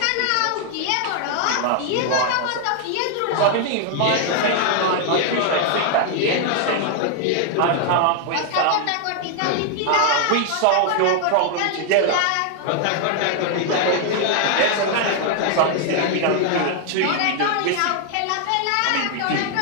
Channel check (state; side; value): different; both; correlation 0.00